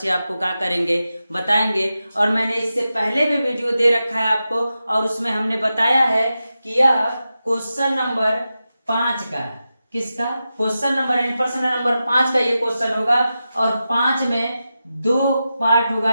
आपको क्या करेंगे बताएंगे। और मैंने इससे पहले भी वीडियो दे रखा है आपको, और उसमें हमने बताया है कि यह क्वेश्चन नंबर 5 का, किसका क्वेश्चन नंबर यानी प्रश्न नंबर 5 का ये क्वेश्चन होगा। और 5 में 2 पार्ट होगा,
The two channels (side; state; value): both; inverted; correlation -0.91